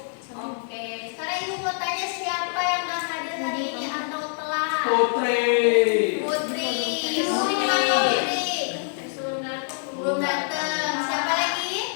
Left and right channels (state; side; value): silent; right; 62 dB below the other